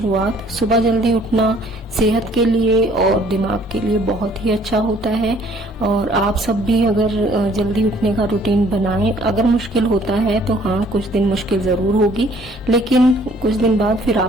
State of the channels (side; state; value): both; normal; correlation 0.59